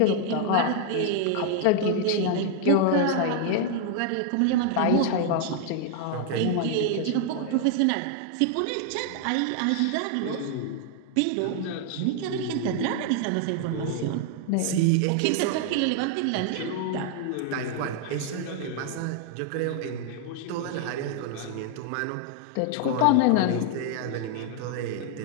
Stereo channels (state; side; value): different; both; correlation 0.00